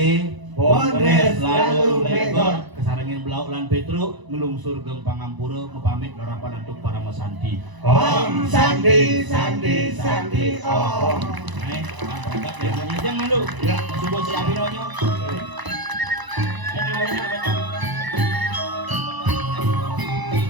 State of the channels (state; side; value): late; left; 1.0 ms